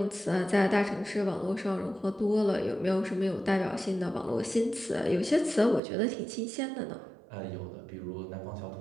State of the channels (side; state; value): left; drops out; at 5.8 s